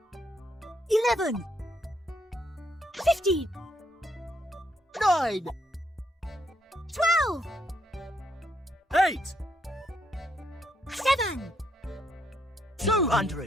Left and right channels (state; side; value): normal; both; correlation 0.74